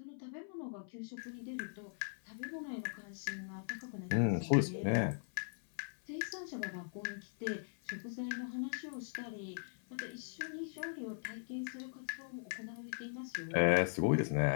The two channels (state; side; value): silent; right; 51 dB below the other